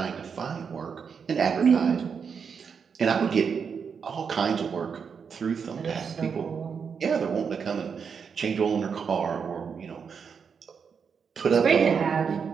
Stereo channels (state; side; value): quieter; left; 6.4 dB